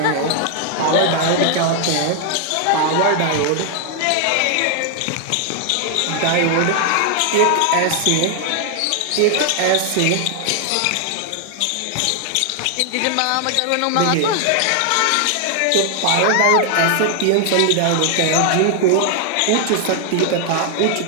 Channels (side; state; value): both; different; correlation 0.00